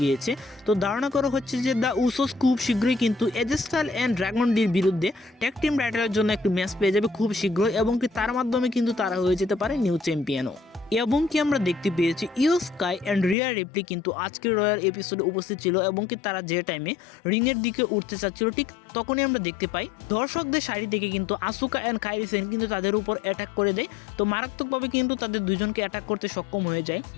গিয়েছে। তো ধারণা করা হচ্ছে যে দ্য উসোস খুব শীঘ্রই কিন্তু এজে স্টাইলস অ্যান্ড ড্রাগন ডির বিরুদ্ধে ট্যাগ টিম টাইটেলের জন্য একটি ম্যাচ পেয়ে যাবে খুব শীঘ্রই, এবং তার মাধ্যমে কিন্তু তারা হয়ে যেতে পারে নিউ চ্যাম্পিয়নও। এবং আমরা দেখতে পেয়েছি ইও স্কাই অ্যান্ড রিয়া রিপ্লি কিন্তু আজকের রয়্যাল এপিসোডে উপস্থিত ছিল, এবং তারা যে টাইমে রিংয়ের দিকে উঠতে চাচ্ছিল ঠিক তখনই আমরা দেখতে পাই দর্শকদের সারি থেকে কিন্তু আসুকা অ্যান্ড কাইরি সেন কিন্তু তাদের উপর অ্যাটাক করে দেয়। তো মারাত্মকভাবে কিন্তু তাদের দুজনকে অ্যাটাক করতে সক্ষম হয়ে যায়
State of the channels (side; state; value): right; drops out; at 13.4 s